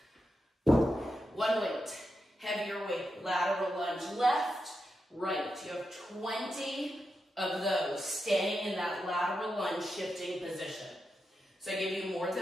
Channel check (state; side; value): normal; both; correlation 0.87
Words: 1 weight, heavier weight, lateral lunge, left, right. You have 20 of those staying in that lateral lunge shifting position. So I give you more